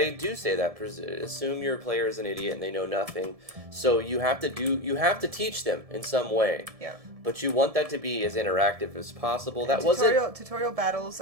do say that. Assume your player is an idiot and they know nothing. So you have to teach them in some way. Yeah. But you want that to be as interactive as possible. Tutorial battles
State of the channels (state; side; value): late; left; 1.7 ms